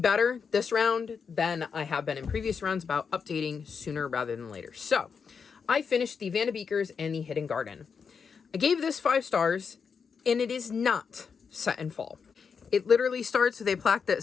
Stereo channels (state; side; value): quieter; right; 6.0 dB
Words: this round than I have been in previous rounds about updating sooner rather than later. So I finished the Van de Beekers and the Hidden Garden. I gave this 5 stars, and it is not set in fall. It literally starts with a plaque